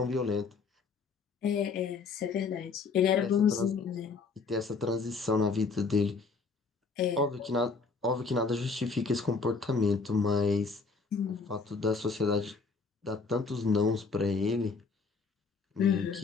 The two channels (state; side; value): quieter; right; 4.5 dB